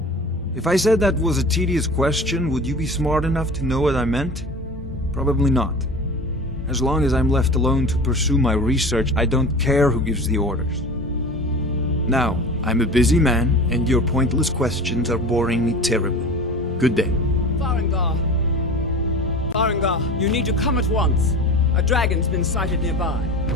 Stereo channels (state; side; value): normal; both; correlation 0.35